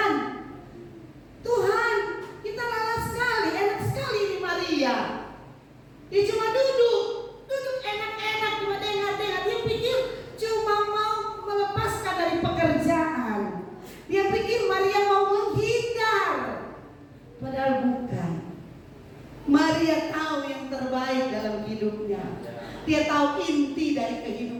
Tuhan, kita lelah sekali, enak sekali ini Maria. Dia cuma duduk enak-enak, cuma dengar-dengar. Dia pikir cuma mau melepaskan dari pekerjaan. Dia pikir Maria mau menghindar. Padahal bukan. Maria tahu yang terbaik dalam hidupnya. Dia tahu inti dari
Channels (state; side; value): identical; both; correlation 1.00